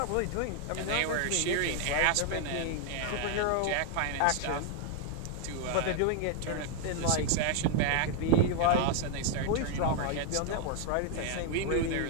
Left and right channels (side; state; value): both; different; correlation 0.00